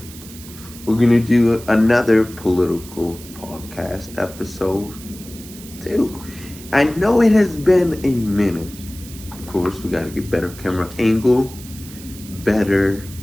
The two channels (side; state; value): right; noise; hiss, 17 dB below the sound